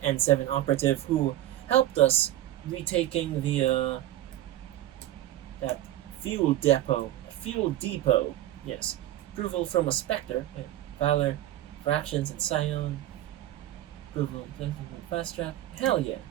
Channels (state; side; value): quieter; left; 13.8 dB